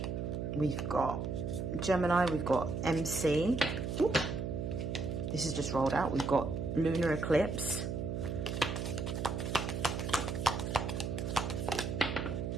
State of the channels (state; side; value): noise; right; hum, 3 dB below the sound